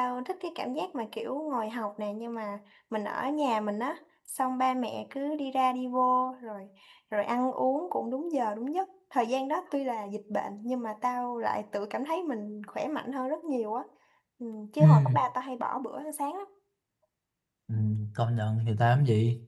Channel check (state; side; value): identical; both; correlation 1.00